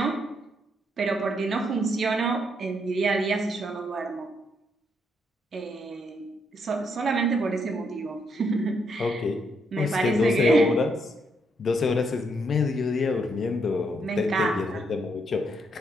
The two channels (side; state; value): both; normal; correlation 0.76